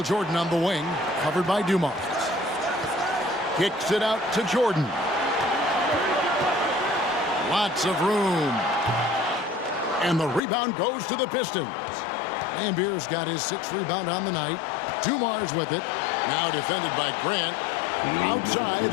Jordan on the wing. Covered by Dumars. Kicks it out to Jordan. Lots of room. And the rebound goes to the Pistons. Laimbeer's got his 6th rebound on the night. Dumars with it. Now defended by Grant. Outside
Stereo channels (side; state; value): right; drops out; at 10.4 s